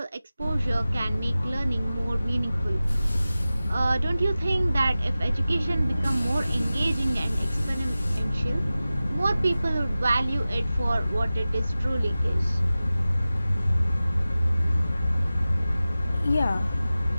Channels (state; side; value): inverted; both; correlation -0.96